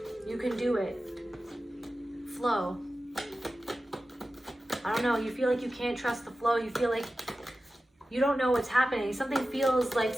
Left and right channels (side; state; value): both; normal; correlation 0.94